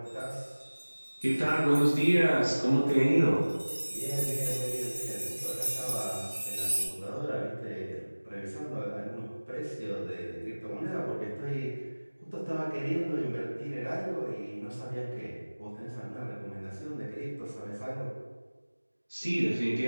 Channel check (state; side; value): inverted; both; correlation -1.00